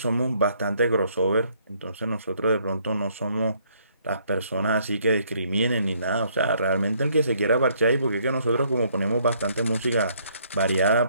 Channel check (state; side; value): inverted; both; correlation -0.67